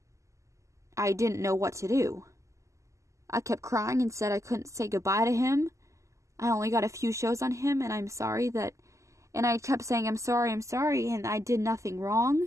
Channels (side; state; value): left; late; 0.15 ms